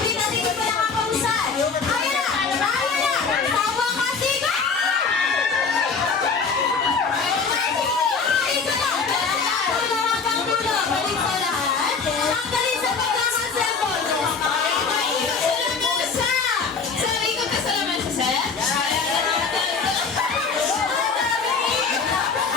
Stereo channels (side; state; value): right; quieter; 5.2 dB